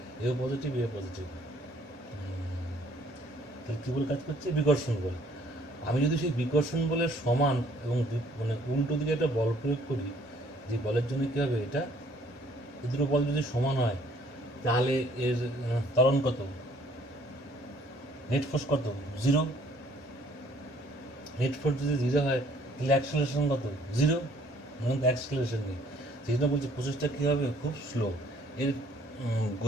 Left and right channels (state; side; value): normal; both; correlation 0.60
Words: এ পজিটিভ, এ পজিটিভ। তাহলে কী বল কাজ করছে? বিকর্ষণ বল। আমি যদি সেই বিকর্ষণ বলের সমান এবং মানে উল্টো দিকে একটা বল প্রয়োগ করি, যে বলের জন্য কী হবে, এটা এই দুটো বল যদি সমান হয় তাহলে এর ত্বরণ কত, নেট ফোর্স কত, 0। নেট ফোর্স যদি 0 হয় তাহলে অ্যাক্সেলারেশন কত, 0। মানে অ্যাক্সেলারেশন নেই। সেই জন্য বলছি প্রসেসটা কী হবে, খুব স্লো। এর